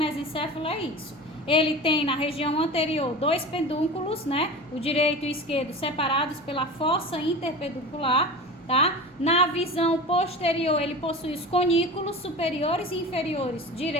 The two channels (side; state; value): both; normal; correlation 0.32